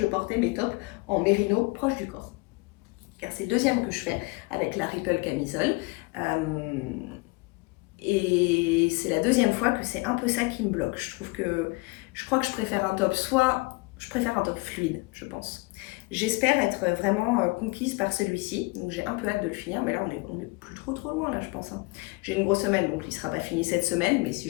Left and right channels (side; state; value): right; quieter; 26.2 dB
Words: porter mes tops en mérino proche du corps. Car c'est le deuxième que je fais avec la Ripple camisole. Et c'est la deuxième fois que c'est un peu ça qui me bloque. Je crois que je préfère un top, je préfère un top fluide, je pense. J'espère être vraiment conquise par celui-ci, donc j'ai un peu hâte de le finir, mais là on est plus trop loin là je pense. Hein. J'ai une grosse semaine, donc il ne sera pas fini cette semaine, mais